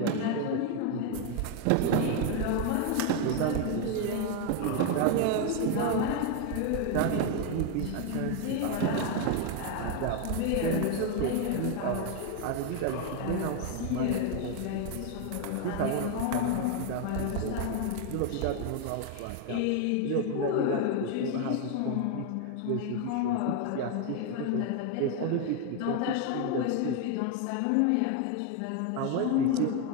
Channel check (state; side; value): different; both; correlation 0.01